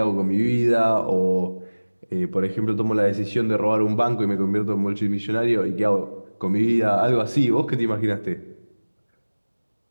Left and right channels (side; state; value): both; inverted; correlation -1.00